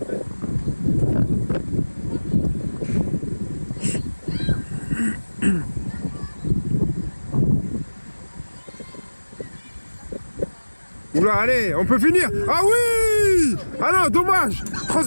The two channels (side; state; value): both; inverted; correlation -1.00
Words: Oula, allez, on peut finir. Ah oui. Ah non, dommage.